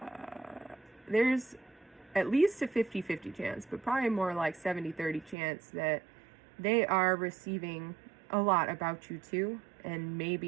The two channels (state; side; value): drops out; left; at 5.4 s